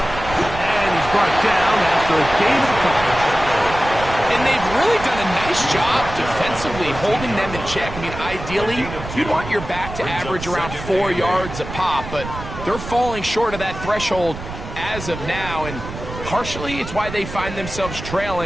And he's brought down after a gain of a couple. And they've really done a nice job defensively holding them in check. I mean, ideally, you'd want your back to average around 4 yards a pop, but they're falling short of that threshold as of now, and partially it's why they find themselves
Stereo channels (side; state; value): right; noise; rumble, 10 dB below the sound